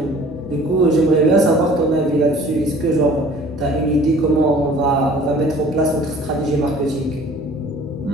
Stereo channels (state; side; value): normal; both; correlation 0.50